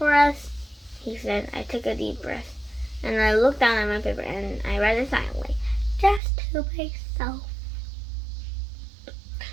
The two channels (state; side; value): drops out; left; at 6.2 s